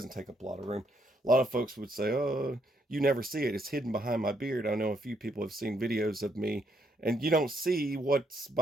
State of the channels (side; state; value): both; normal; correlation 0.74